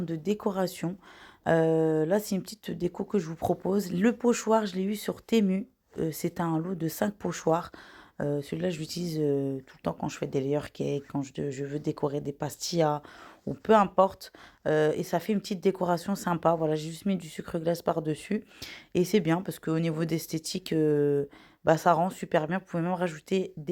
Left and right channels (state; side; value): identical; both; correlation 1.00